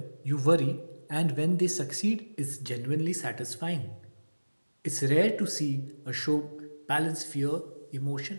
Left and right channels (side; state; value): both; inverted; correlation -1.00